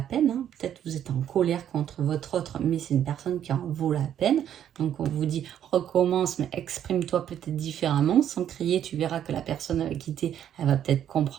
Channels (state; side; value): quieter; left; 10.1 dB